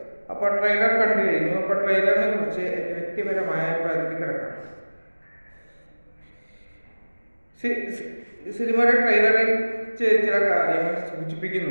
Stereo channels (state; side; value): inverted; both; correlation -1.00